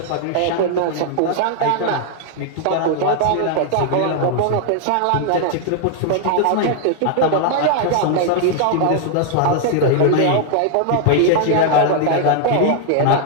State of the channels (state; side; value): different; both; correlation 0.00